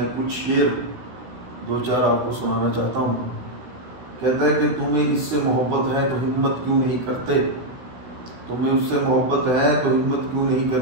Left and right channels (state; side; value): late; left; 16 ms